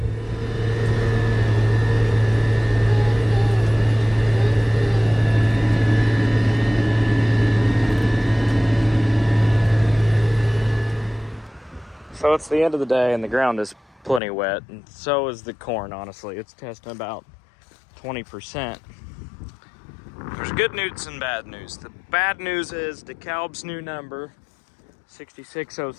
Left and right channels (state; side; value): drops out; right; at 14.2 s